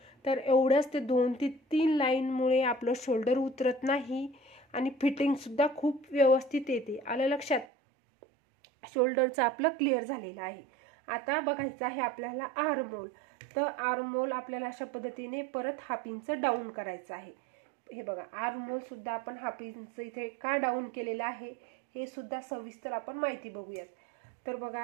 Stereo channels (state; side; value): drops out; left; at 7.7 s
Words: तर एवढंच ते 2 ते 3 लाईनमुळे आपलं शोल्डर उतरत नाही आणि फिटिंगसुद्धा खूप व्यवस्थित येते. आलं लक्षात. शोल्डरचं आपलं क्लिअर झालेलं आहे. आता बघायचं आहे आपल्याला आर्महोल. तर आर्महोल आपल्याला अशा पद्धतीने परत 1/2 इंच डाऊन करायचं आहे. हे बघा, आर्महोल सुद्धा आपण 1/2 इंच इथे का डाऊन केलेलं आहे हे सुद्धा सविस्तर आपण माहिती बघूयात. तर